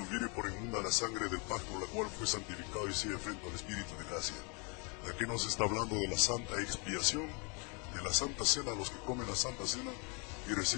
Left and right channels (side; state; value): right; quieter; 34.3 dB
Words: por inmunda la sangre del pacto, la cual fue santificado y sigue frente al Espíritu de gracia. Aquí nos está hablando de la santa expiación, de la santa cena, los que comen la santa cena y